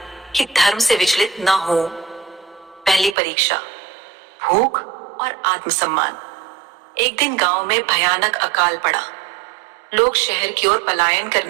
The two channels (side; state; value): left; drops out; at 3.2 s